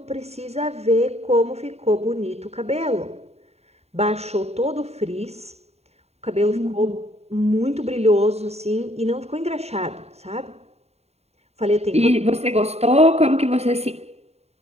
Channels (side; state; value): left; late; 0.31 ms